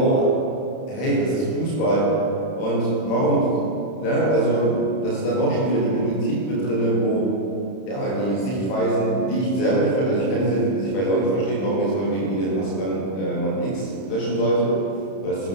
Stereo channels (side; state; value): right; late; 31 ms